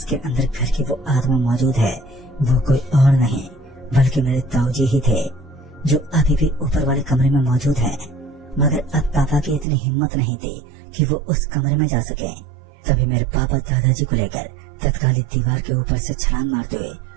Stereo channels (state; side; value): drops out; left; at 9.7 s